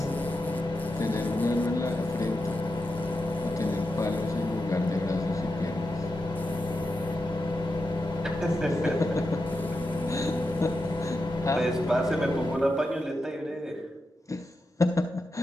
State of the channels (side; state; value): both; normal; correlation 0.88